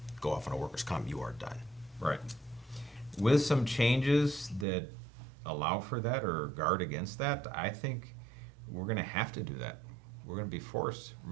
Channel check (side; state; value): left; drops out; at 4.7 s